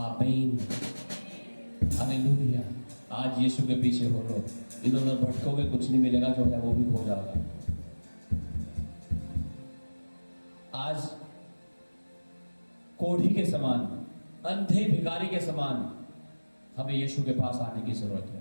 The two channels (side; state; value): both; inverted; correlation -1.00